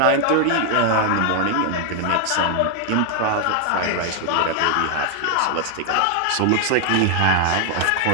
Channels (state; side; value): different; both; correlation 0.00